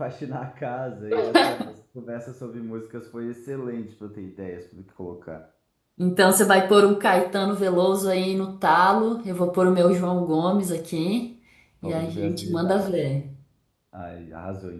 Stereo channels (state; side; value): identical; both; correlation 1.00